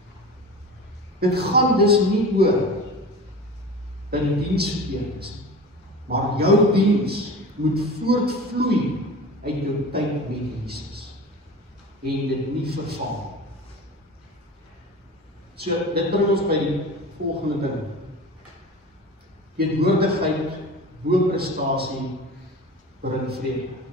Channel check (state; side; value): normal; both; correlation 0.35